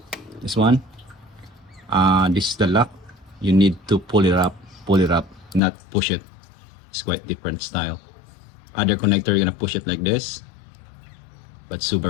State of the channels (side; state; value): right; drops out; at 5.6 s